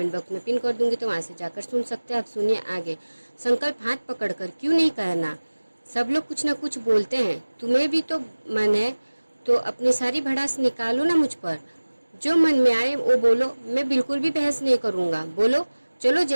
बॉक्स में पिन कर दूंगी, तो वहां से जाकर सुन सकते हैं। आप सुनिए आगे। संकल्प हाथ पकड़कर क्यों नहीं कहना, सब लोग कुछ न कुछ बोलते हैं, तुम्हें भी तो मन है तो अपनी सारी भड़ास निकालो ना मुझ पर। जो मन में आए वो बोलो, मैं बिल्कुल भी बहस नहीं करूंगा। बोलो, चलो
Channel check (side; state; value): both; inverted; correlation -1.00